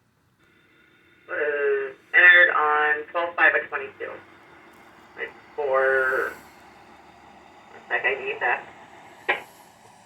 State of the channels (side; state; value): both; identical; correlation 1.00